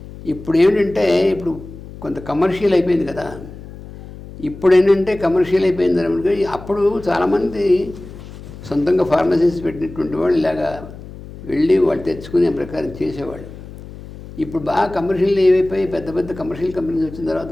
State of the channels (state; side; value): noise; left; hum, 15 dB below the sound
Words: ఇప్పుడు ఏంటంటే ఇప్పుడు కొంత కమర్షియల్ అయిపోయింది కదా. ఇప్పుడు ఏంటంటే కమర్షియల్ అయిపోయింది అనమాట. అప్పుడు చాలామంది సొంతంగా ఫార్మసీస్ పెట్టినటువంటి వాళ్ళు ఇలాగా వెళ్ళి వాళ్ళు తెచ్చుకునే ప్రకారం చేసేవాళ్ళు. ఇప్పుడు బాగా కమర్షియల్ ఏవైపోయి పెద్ద పెద్ద కమర్షియల్ కంపెనీస్ వచ్చిన తర్వాత